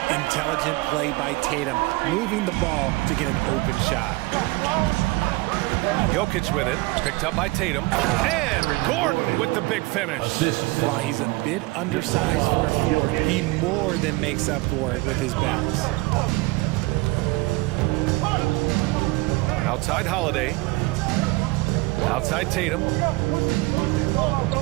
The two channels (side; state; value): left; quieter; 22.8 dB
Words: Intelligent play by Tatum, moving the ball to get an open shot. Jokic with it, picked up by Tatum. And Gordon with the big finish. While he's a bit undersized for a forward, he more than makes up for it with his bounce. Outside Holiday. Outside Tatum.